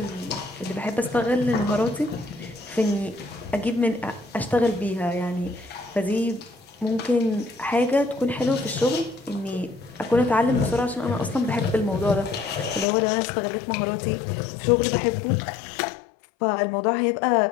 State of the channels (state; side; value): drops out; right; at 12.9 s